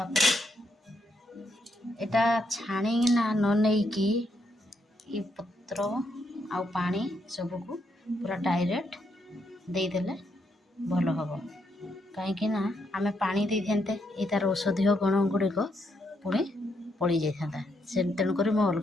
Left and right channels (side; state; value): both; normal; correlation 0.78